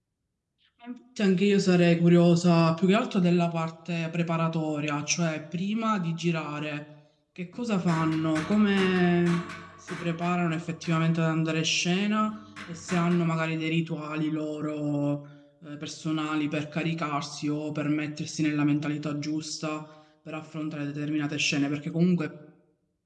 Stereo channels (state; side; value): identical; both; correlation 1.00